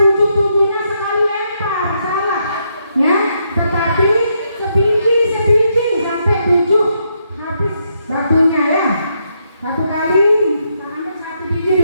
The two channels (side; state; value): both; inverted; correlation -0.78